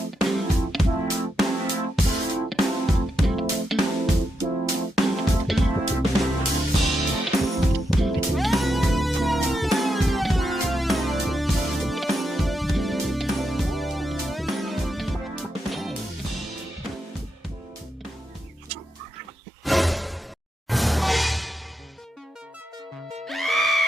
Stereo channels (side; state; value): both; normal; correlation 0.84